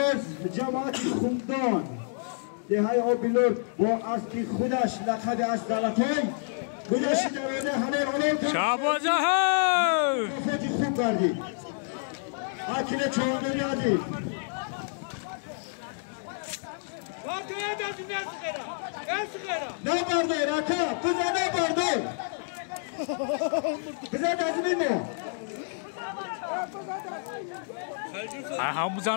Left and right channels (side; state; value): right; silent; digital silence